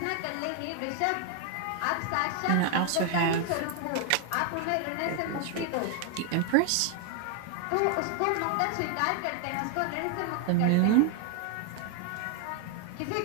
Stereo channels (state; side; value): different; both; correlation 0.01